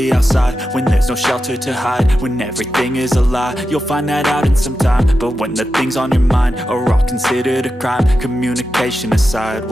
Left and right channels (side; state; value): both; normal; correlation 0.90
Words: outside when there's no shelter to hide. When everything is a lie, you'll find that out in some time. But when the things on your mind are all considered a crime, communication aside,